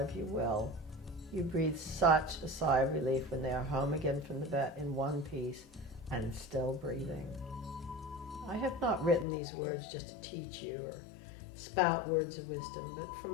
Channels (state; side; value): drops out; right; at 9.2 s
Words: you will. You breathe such a sigh of relief when they are home again from the vet in one piece and still breathing. I have not written these words just to teach you or spout words of wisdom, but from